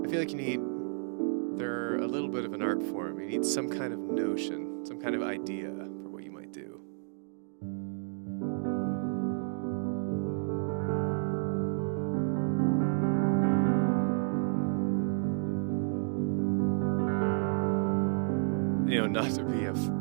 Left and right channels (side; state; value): left; silent; 57 dB below the other